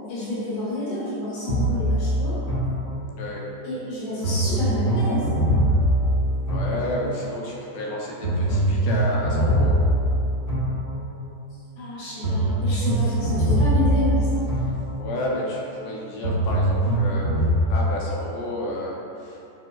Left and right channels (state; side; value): late; right; 14 ms